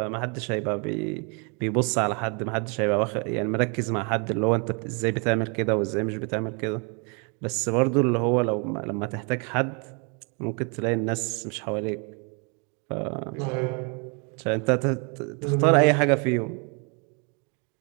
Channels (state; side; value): quieter; left; 34.8 dB